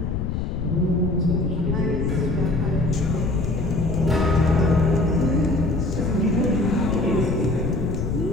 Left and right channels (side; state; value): left; noise; rumble, 2 dB below the sound